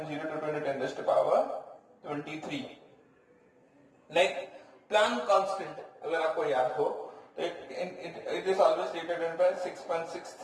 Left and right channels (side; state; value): both; identical; correlation 1.00